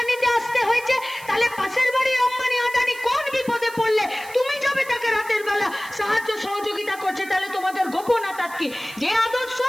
নিতে আসতে হয়েছে? তাহলে পাশের বাড়ির আম্বানি আদানি কোন বিপদে পড়লে তুমি যাবে তাকে রাতের বেলা সাহায্য সহযোগিতা করছে? তাহলে তোমাদের গোপন আতাত কি? যে আদর্শ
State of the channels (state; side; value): noise; right; hiss, 18 dB below the sound